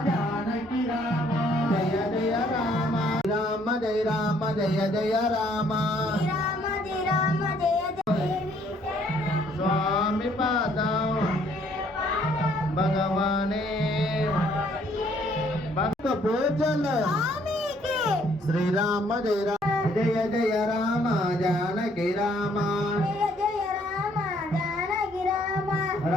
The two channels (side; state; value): both; normal; correlation 0.65